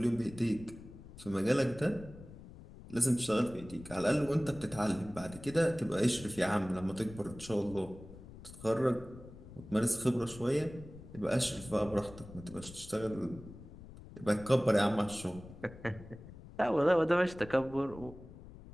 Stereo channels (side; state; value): left; noise; rumble, 16 dB below the sound